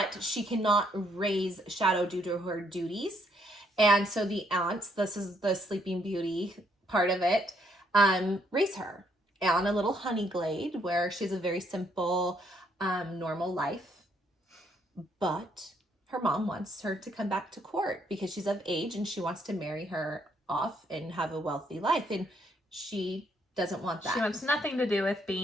she cannot raise Shadow due to her duties. And so the aunts, this is the Sleeping Beauty part of it, raise her on a little honey glade where she has a very simple, normal life. But her mom wants her to come back to court because she's of age and she wants to marry her off and have a wealthy life. And she doesn't want that. She wants nothing to do with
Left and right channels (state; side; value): normal; both; correlation 0.71